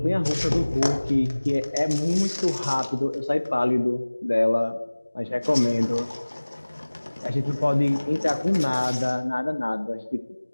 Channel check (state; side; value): inverted; both; correlation -1.00